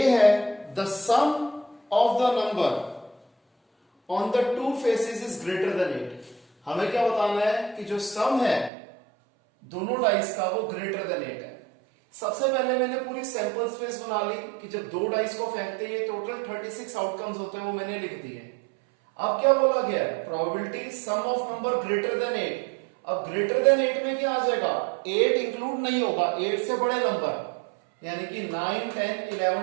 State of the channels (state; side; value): drops out; left; at 8.7 s